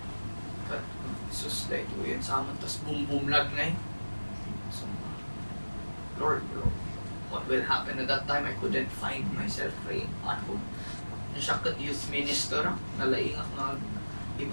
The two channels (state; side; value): inverted; both; correlation -1.00